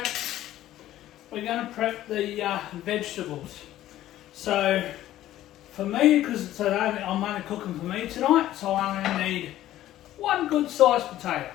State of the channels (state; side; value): quieter; right; 13.7 dB